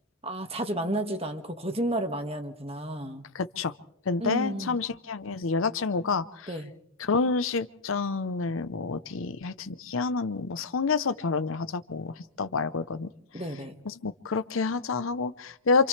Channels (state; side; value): quieter; right; 3.2 dB